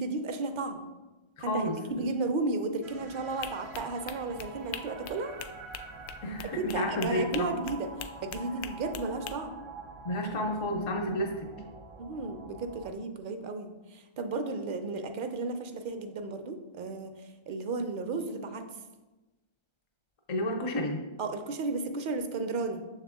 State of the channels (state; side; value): late; right; 1.3 ms